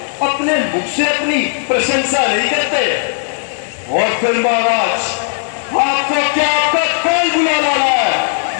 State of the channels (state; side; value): silent; right; digital silence